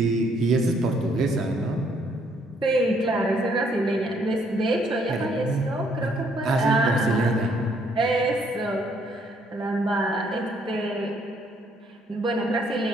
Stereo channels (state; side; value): normal; both; correlation 0.68